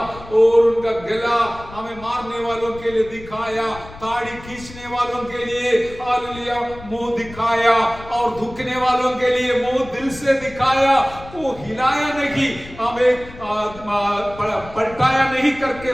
और उनका गला हमें मारने वालों के लिए दिखाया, ताड़ी खींचने वालों के लिए हालेलुया मुंह दिखाया, और धुकने वालों के लिए मुंह दिल से दिखाया। वो हिलाया नहीं, हमें पलटाया नहीं करके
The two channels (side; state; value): left; noise; rumble, 17 dB below the sound